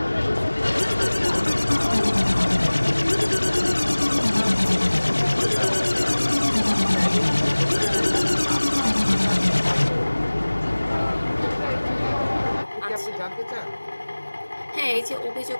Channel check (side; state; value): both; inverted; correlation -1.00